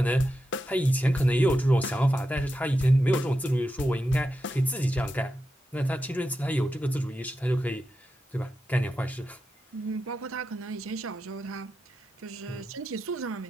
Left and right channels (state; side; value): normal; both; correlation 0.88